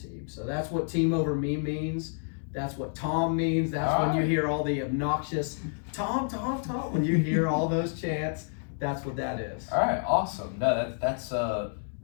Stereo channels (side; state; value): right; silent; digital silence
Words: team. So that's what team over me means. That's what Tom means. That's when you hear all the obnoxious Tom. When you hear all those chants, that's what that is. All right, awesome. No, that's